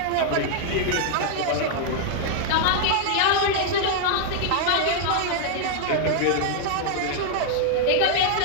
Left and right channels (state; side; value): different; both; correlation 0.00